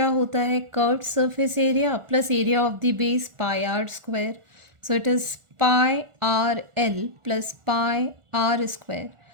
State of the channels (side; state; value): left; late; 1.4 ms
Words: होता है? Curved surface area plus area of the base pi r square. So it is pi are l plus pi r square.